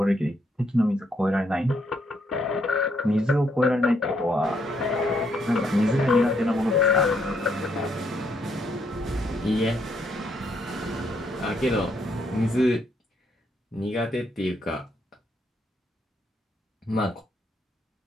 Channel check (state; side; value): normal; both; correlation 0.74